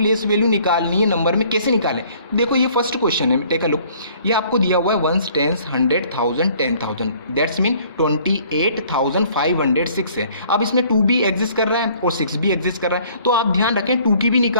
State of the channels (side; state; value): both; inverted; correlation -0.57